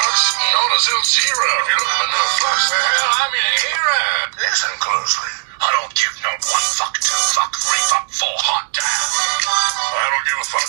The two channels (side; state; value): left; silent; digital silence